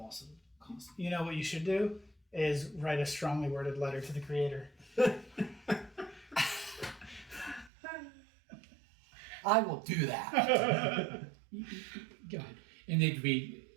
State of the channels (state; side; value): drops out; left; at 7.7 s